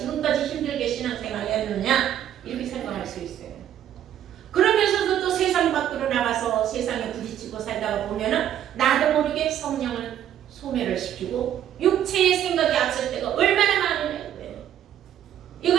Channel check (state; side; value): quieter; left; 10.7 dB